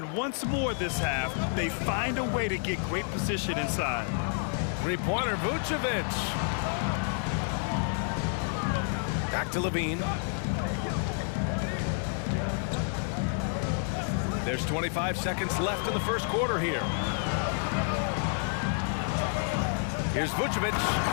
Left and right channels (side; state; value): right; silent; 58 dB below the other